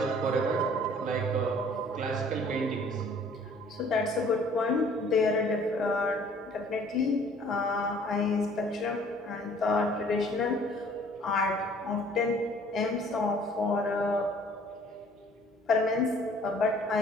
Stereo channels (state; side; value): normal; both; correlation 0.55